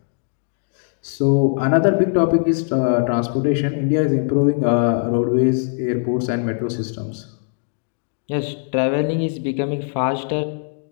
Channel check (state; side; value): silent; right; 65 dB below the other